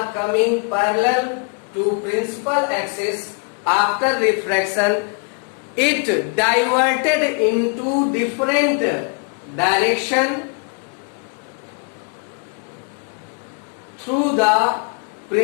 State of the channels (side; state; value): right; quieter; 35.9 dB